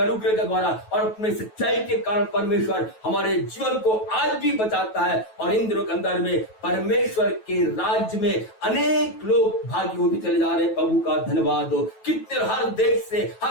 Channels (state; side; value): late; right; 9.2 ms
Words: अनुग्रह के द्वारा और अपने सच्चाई के कारण परमेश्वर हमारे जीवन को आज भी बचाता है। और इन दिनों के अंदर में परमेश्वर के राज्य में अनेक लोग भागी होते चले जा रहे हैं। प्रभु का धन्यवाद हो। कितने हर देश से,